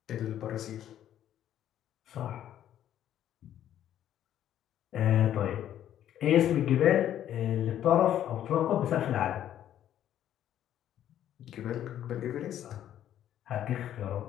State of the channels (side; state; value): right; quieter; 11.2 dB